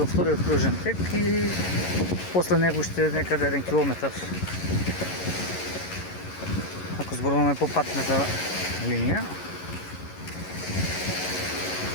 вториот кружен тек и после него ще некаде 1 километар. Ако зборуваме по патната линија.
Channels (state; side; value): late; right; 11 ms